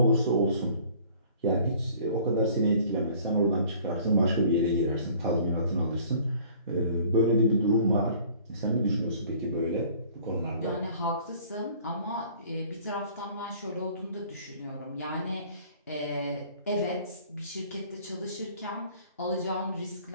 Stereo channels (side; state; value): both; inverted; correlation -0.52